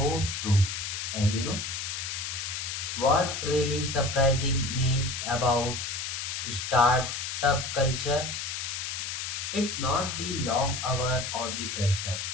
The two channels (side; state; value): left; noise; hiss, 4 dB below the sound